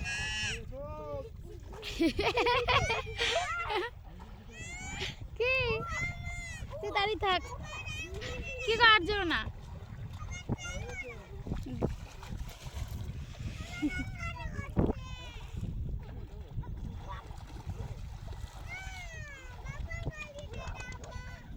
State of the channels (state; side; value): identical; both; correlation 1.00